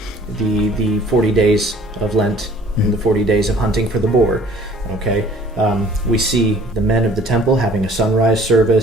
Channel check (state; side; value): normal; both; correlation 0.53